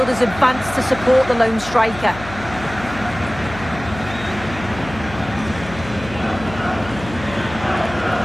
advance to support the lone striker.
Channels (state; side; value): noise; left; hum, 13 dB below the sound